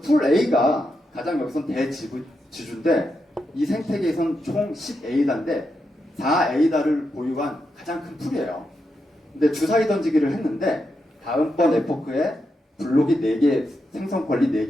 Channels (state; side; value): normal; both; correlation 0.85